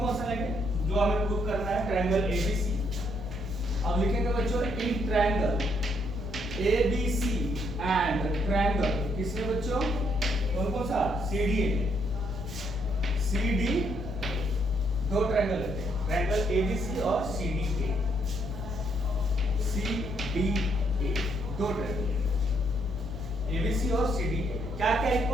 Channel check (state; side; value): noise; left; hum, 10 dB below the sound